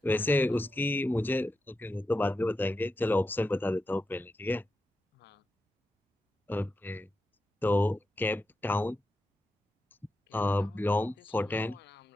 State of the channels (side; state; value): both; normal; correlation 0.89